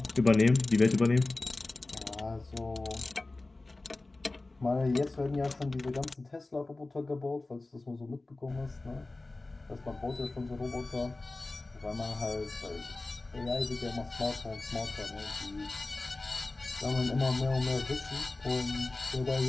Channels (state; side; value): quieter; right; 3.1 dB